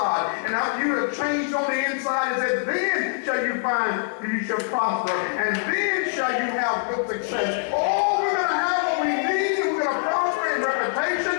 And after you have changed on the inside, it says, then shall you find you shall prosper, and then shall you have good success. Oh, we're going to have what we need, and we're going to prosper in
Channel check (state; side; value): silent; right; digital silence